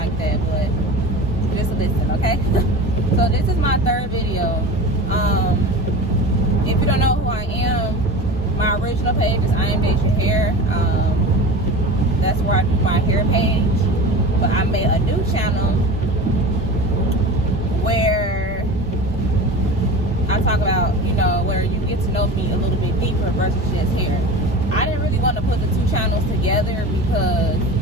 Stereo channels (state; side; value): normal; both; correlation 0.33